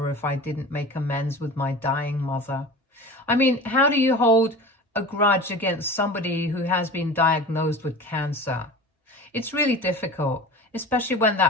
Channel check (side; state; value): both; normal; correlation 0.35